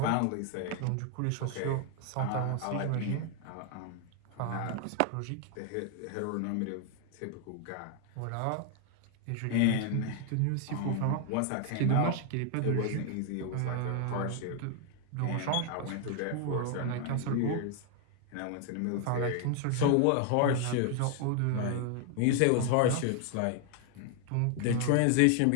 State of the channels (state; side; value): different; both; correlation 0.00